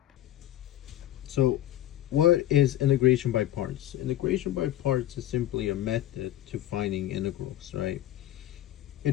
So what is integration by parts? Integration by parts is simply a method to finding integrals, right? It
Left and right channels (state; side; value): quieter; right; 13.3 dB